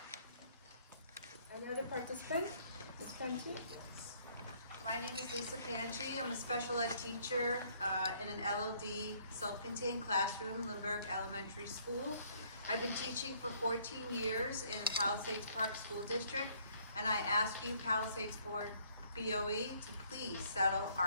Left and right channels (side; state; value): both; inverted; correlation -0.63